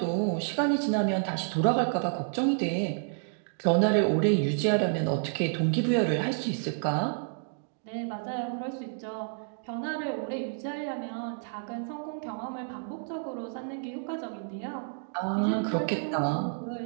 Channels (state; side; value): silent; left; digital silence